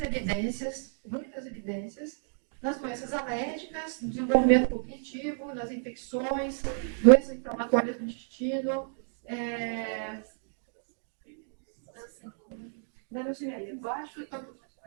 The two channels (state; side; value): silent; left; digital silence